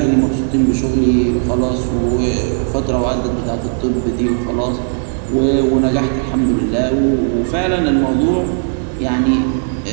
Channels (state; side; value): silent; left; digital silence